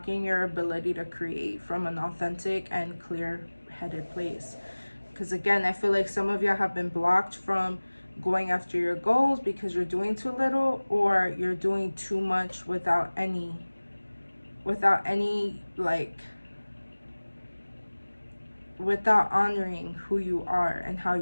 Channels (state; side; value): inverted; both; correlation -1.00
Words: your ability to create from an authentic and clear-headed place. Because again, I feel like some of y'all have been blocked from going after your goals because you're doing too little, or you're doing too much without any like, without honoring who you are and how